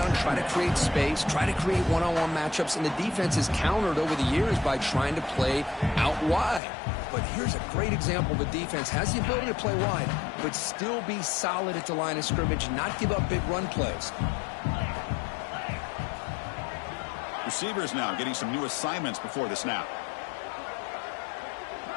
try to create space, try to create one-on-one matchups, and the defense is countered over the years by trying to play out wide. But here's a great example. The defense has the ability to play wide, but still be solid at the line of scrimmage, not give up big run plays. Receivers now getting some new assignments before the snap.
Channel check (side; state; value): right; drops out; at 6.6 s